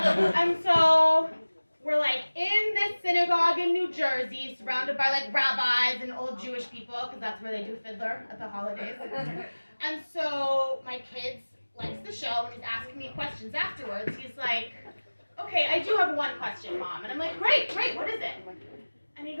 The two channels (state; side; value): inverted; both; correlation -1.00